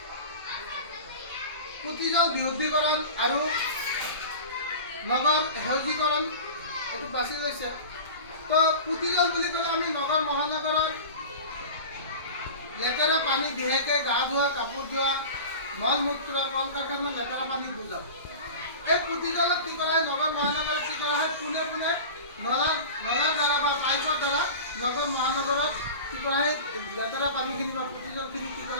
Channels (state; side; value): inverted; both; correlation -0.33